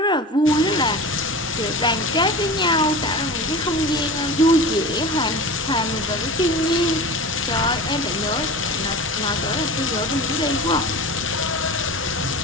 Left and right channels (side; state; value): both; normal; correlation 0.33